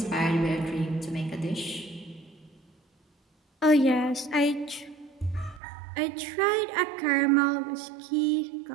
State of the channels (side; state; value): left; drops out; at 5.6 s